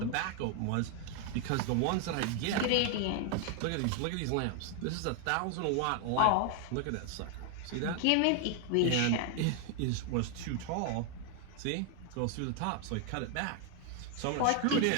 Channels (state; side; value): different; both; correlation 0.00